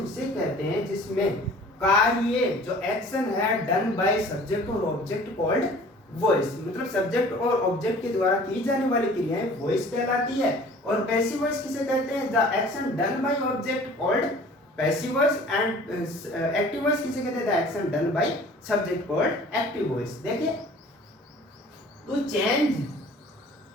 कहते हैं जिसमें कार्य, जो एक्शन है, डन बाय सब्जेक्ट और ऑब्जेक्ट कॉल्ड वॉइस। मतलब सब्जेक्ट और ऑब्जेक्ट के द्वारा की जाने वाली क्रियाएं वॉइस कहलाती है। और पैसिव वॉइस किसे कहते हैं, the action done by object called passive voice, and active voice किसे कहते हैं, the action done by subject called active voice. देखिए to change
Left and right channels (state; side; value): normal; both; correlation 0.48